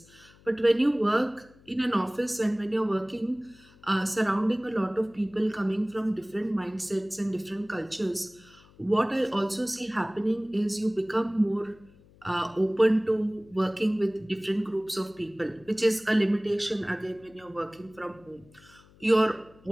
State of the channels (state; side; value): noise; left; hum, 27 dB below the sound